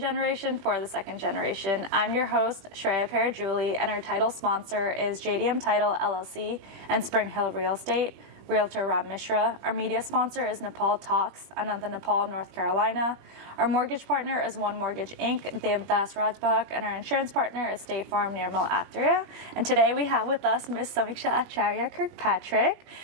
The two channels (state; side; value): late; left; 20 ms